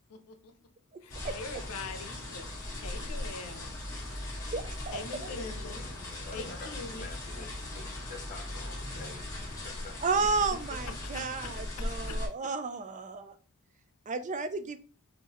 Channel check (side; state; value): both; normal; correlation 0.04